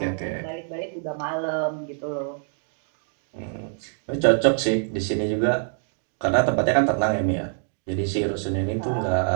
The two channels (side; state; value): left; silent; digital silence